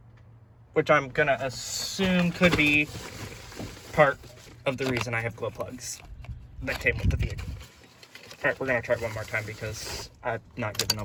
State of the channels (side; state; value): both; identical; correlation 1.00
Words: which I'm gonna assume could be part of the reason I have glow plugs that came with the vehicle. Alright, we're gonna try it one more time because I'm not giving